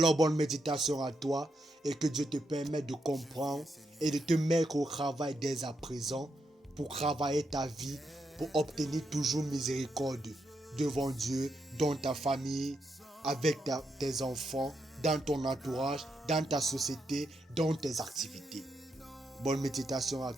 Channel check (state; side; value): normal; both; correlation 0.82